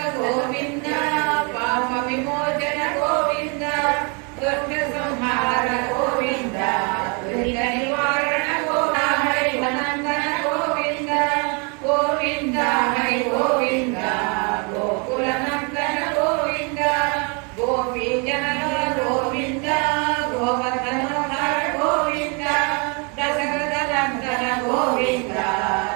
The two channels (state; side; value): quieter; left; 34.3 dB